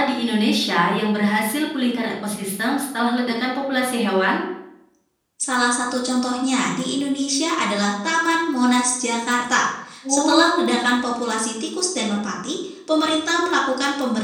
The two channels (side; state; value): both; identical; correlation 1.00